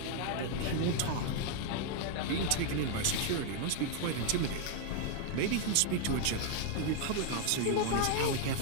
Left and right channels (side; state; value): both; different; correlation 0.00